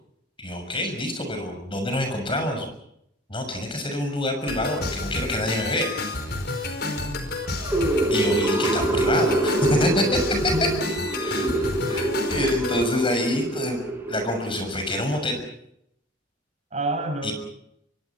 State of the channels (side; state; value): both; normal; correlation 0.45